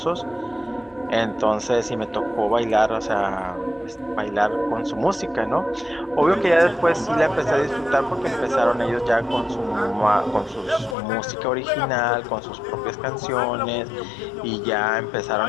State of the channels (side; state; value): right; drops out; at 11.0 s